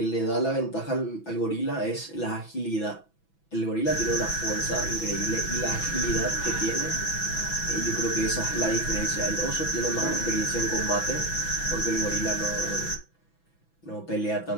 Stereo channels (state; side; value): late; right; 6.0 ms